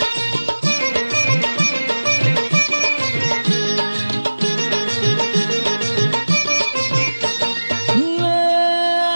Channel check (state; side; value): inverted; both; correlation -1.00